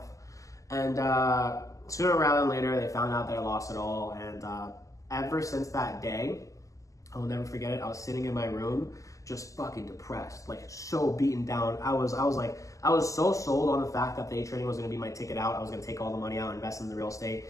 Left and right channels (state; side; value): late; right; 0.16 ms